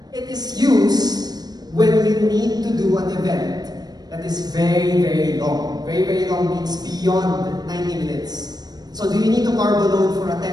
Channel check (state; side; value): late; left; 0.19 ms